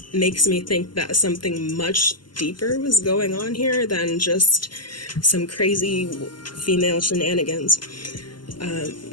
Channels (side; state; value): right; late; 0.71 ms